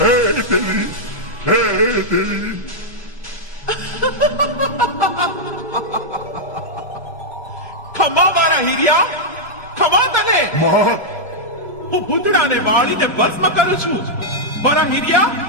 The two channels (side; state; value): both; normal; correlation -0.05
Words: દેવી હે દેવી ખમા મારા હીરિયા, ખમા તને. માં હું ભૂતડાને વાળીને ભસ્મ કરું છું. મારા હીરિયા,